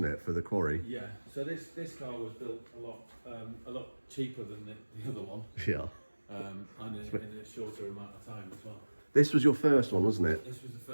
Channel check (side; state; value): both; inverted; correlation -1.00